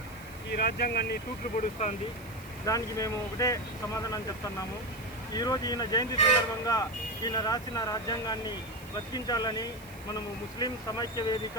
ఈ రాజ్యాంగాన్ని తూట్లు పొడుస్తుంది। దానికి మేము ఒకటే సమాధానం చెప్తున్నాము। ఈరోజు ఈయన జయంతి సందర్భంగా ఈయన రాసిన రాజ్యాంగాన్ని బతికించాలని మనము ముస్లిం సమైక్య వేదిక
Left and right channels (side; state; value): right; noise; hiss, 21 dB below the sound